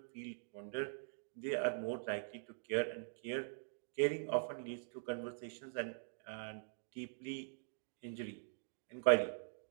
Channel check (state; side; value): silent; left; digital silence